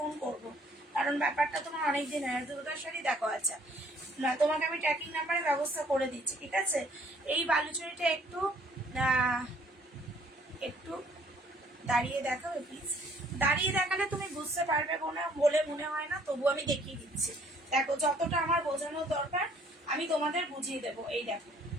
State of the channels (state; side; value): normal; both; correlation 0.60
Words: করবো, কারণ ব্যাপারটা তোমার অনেকদিন হয়। দুর্গা শাড়ি দেখো, আচ্ছা না তোমাকে আমি ট্র্যাকিং নাম্বারের ব্যবস্থা করে দিচ্ছি, ঠিক আছে। এই বালুচুরিটা একটু একটু দাঁড়িয়ে দেখাবে প্লিজ, দাঁড়িয়ে দেখালে তুমি বুঝতে পারবে বলে মনে হয় না, তবু আমি দেখিয়ে দিচ্ছি। দেখো যতটা আমার বোঝানোর দরকার আমি তোমাদের বুঝিয়ে দেবো। এই দেখো